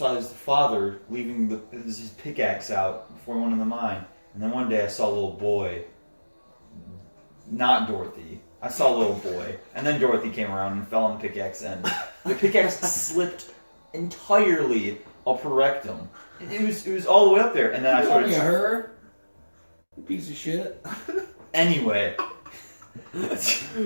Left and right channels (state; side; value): inverted; both; correlation -1.00